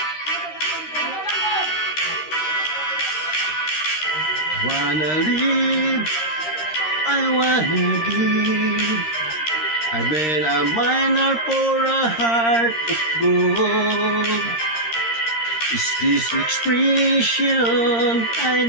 Wanna live, I wanna give. I've been a miner for a heart of gold. Is this expression I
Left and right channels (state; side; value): late; right; 13 ms